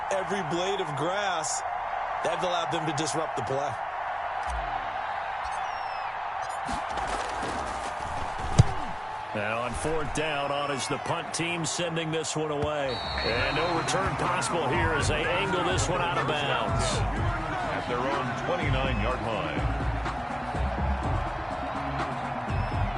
every blade of grass. That allowed them to disrupt the play. Now on 4th down, on is the punt team sending this one away. And no return possible here as they angle this one out of bounds. At their own 29-yard line.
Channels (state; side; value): identical; both; correlation 1.00